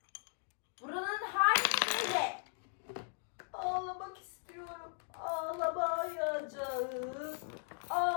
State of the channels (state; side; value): silent; right; 53 dB below the other